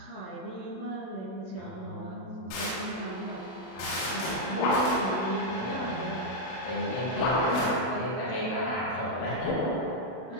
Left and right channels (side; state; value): right; late; 32 ms